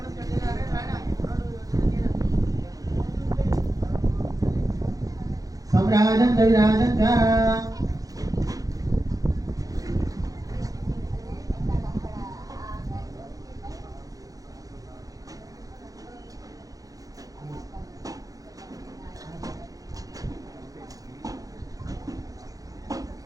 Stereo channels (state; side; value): late; left; 0.17 ms